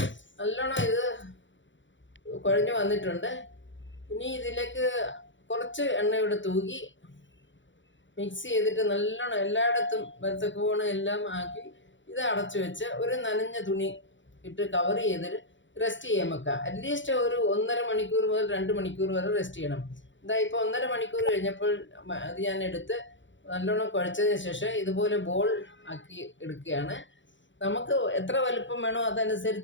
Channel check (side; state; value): right; late; 0.54 ms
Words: നല്ലോണം ഇത് കുഴഞ്ഞു വന്നിട്ടുണ്ട്. ഇനി ഇതിലേക്ക് കുറച്ച് എണ്ണയോടെ തൂകി മിക്സ് ചെയ്തിട്ട് നല്ലോണം എല്ലായിടത്തും വരത്തക്കോണം എല്ലാം ആക്കി ഇത് അടച്ചു വെച്ച് ഒരു നനഞ്ഞ തുണി ഇട്ട് കവർ ചെയ്തിട്ട് റെസ്റ്റ് ചെയ്യാൻ വെക്കാം. അറ്റ്ലീസ്റ്റ് ഒരു 1.5 മണിക്കൂർ മുതൽ 2 മണിക്കൂർ വരെ റെസ്റ്റ് ചെയ്യണം. ഇപ്പോൾ 1.5 മണിക്കൂർ കഴിഞ്ഞപ്പോൾ അത് ഞാൻ എടുത്ത് നല്ലോണം കുഴച്ചതിന് ശേഷം ഇതുപോലെ ബോൾ ആക്കി എടുക്കുകയാണ്. നമുക്ക് എത്ര വലുപ്പം വേണോ